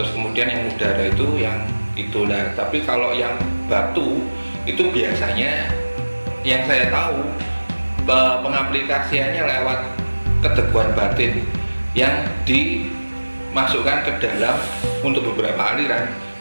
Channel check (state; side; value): inverted; both; correlation -1.00